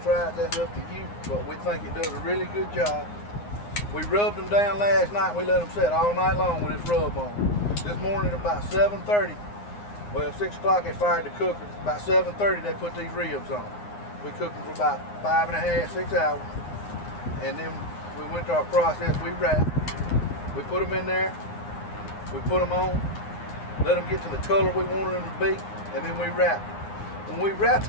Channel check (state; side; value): late; right; 9.7 ms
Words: try it, that's up to you, but we think it does a really good job. We rubbed them down last night, and we let them set all night long with this rub on. This morning about 7:30, well 6 o'clock they fired the cooker. About 7:30 they put these ribs on. We cooked them for about 5.5, 6 hours, and then we went to our process. We wrapped. We put them in there. We put them on. Let them get to the color we wanted them to be, and then we wrapped them. When we wrapped